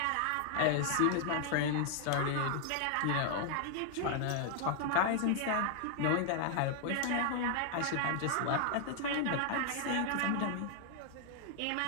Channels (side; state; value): both; different; correlation 0.00